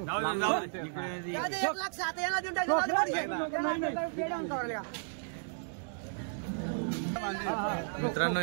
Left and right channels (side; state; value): left; silent; digital silence